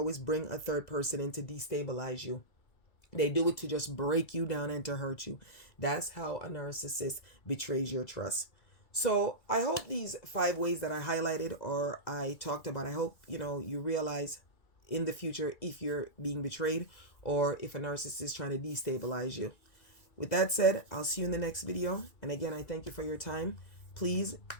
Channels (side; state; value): right; late; 2.3 ms